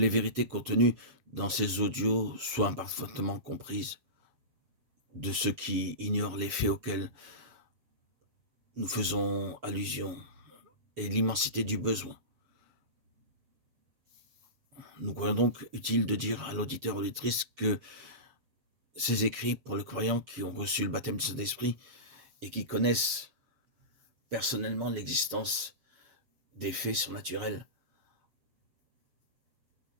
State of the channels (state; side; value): late; left; 7.3 ms